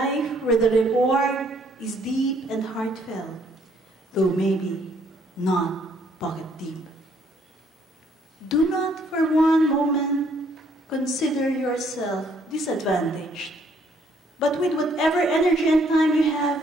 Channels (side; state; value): both; normal; correlation 0.66